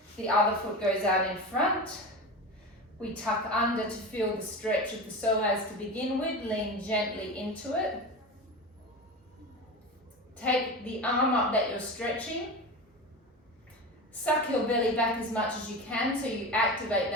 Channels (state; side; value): normal; both; correlation 0.27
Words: The other foot goes out in front. We tuck under to feel the stretch of the psoas to begin with. Lean gently into it. Take the arm up that you're stretching. Suck your belly back as much as you can so you activate